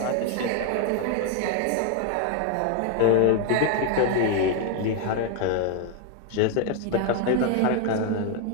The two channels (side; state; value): both; different; correlation 0.00